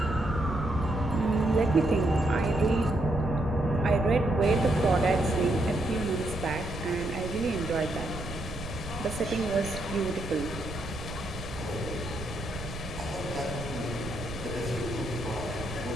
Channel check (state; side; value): noise; right; rumble, 10 dB below the sound